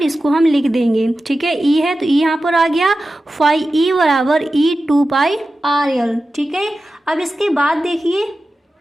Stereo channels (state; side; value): normal; both; correlation 0.94